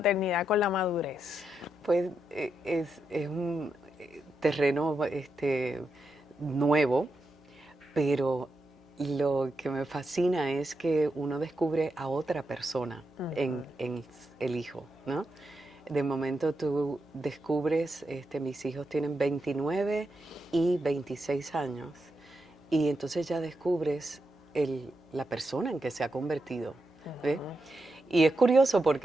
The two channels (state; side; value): normal; both; correlation 0.85